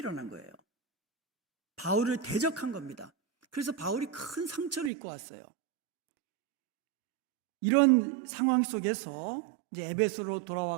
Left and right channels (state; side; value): drops out; left; at 4.9 s